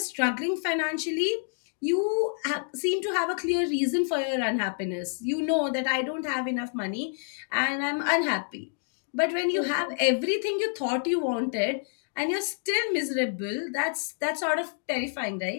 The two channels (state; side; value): silent; right; digital silence